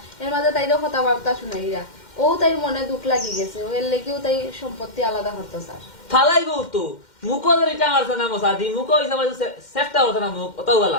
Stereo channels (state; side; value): late; right; 2.1 ms